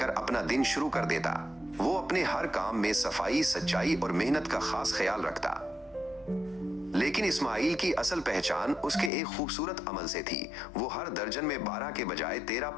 अपना दिन शुरू कर देता। वो अपने हर काम में सफाई, सच्चाई और मेहनत का खास ख्याल रखता। लेकिन इस्माइल की असल पहचान उसके एक खूबसूरत अमल से थी। वो हर दर्जन में 12 के बजाय 13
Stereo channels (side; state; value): right; drops out; at 9.1 s